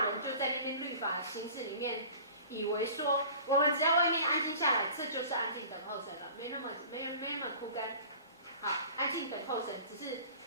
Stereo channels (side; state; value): both; inverted; correlation -0.43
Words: 人就在那边律法形式里面，以为说我们只要外面安静下来，这就是安静等候神了，没那么枯干。好，安静等候神，只是